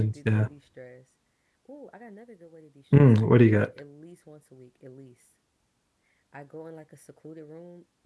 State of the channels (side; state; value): both; identical; correlation 1.00